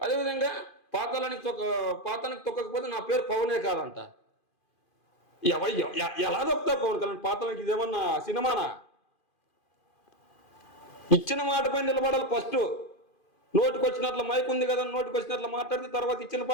అదేవిధంగా పాతానికి తొక్కకపోతే నా పేరు పవనే కాదంట. ఎలా తొక్కుతా పవన్ కళ్యాణ్ పాతానికి? ఇదేమన్నా సినిమానా? ఇచ్చిన మాట పైన నిలబడాలి. ఫస్ట్ నోటికి వచ్చినట్లు మైక్ ఉంది కదా, నోటికి వచ్చినట్లు మాట్లాడితే తర్వాత ఇచ్చిన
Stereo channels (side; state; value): right; late; 2.5 ms